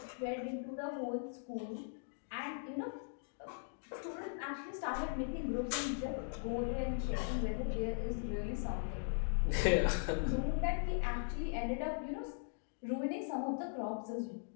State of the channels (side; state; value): right; silent; digital silence